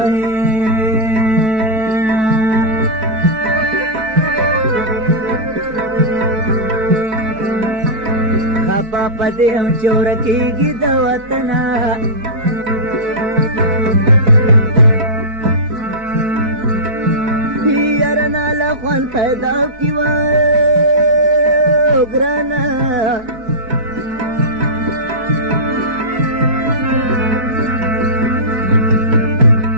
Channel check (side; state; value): left; late; 4.6 ms